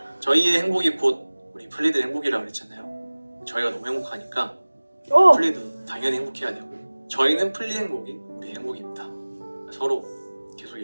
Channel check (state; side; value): inverted; both; correlation -1.00